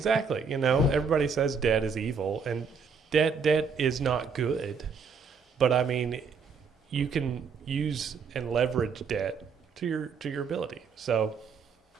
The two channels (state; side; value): quieter; left; 5.4 dB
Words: You know, everybody says debt is evil, and debt is not good. But I mean, you can use and leverage debt to your ability. So,